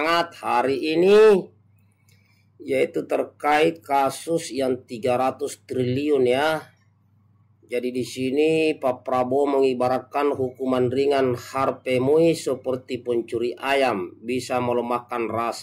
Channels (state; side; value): identical; both; correlation 1.00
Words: hari ini yaitu terkait kasus yang 300 triliun ya. Jadi di sini Pak Prabowo mengibaratkan hukuman ringan Harvey Muiz seperti pencuri ayam, bisa melemahkan